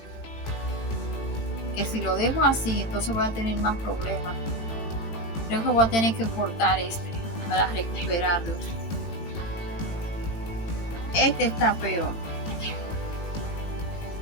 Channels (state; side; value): late; right; 19 ms